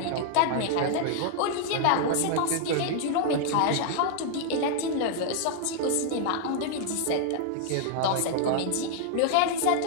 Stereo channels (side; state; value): both; different; correlation 0.00